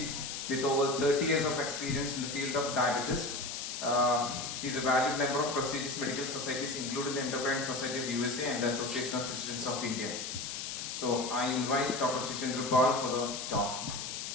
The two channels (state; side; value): noise; left; hiss, 5 dB below the sound